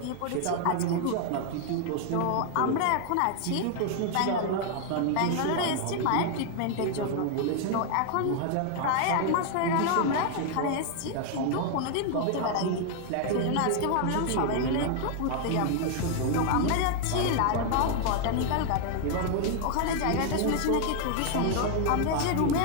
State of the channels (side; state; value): both; different; correlation 0.00